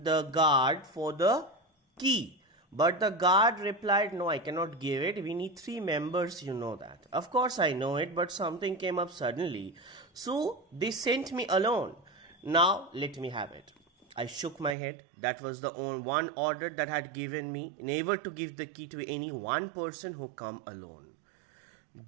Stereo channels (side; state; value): left; drops out; at 14.8 s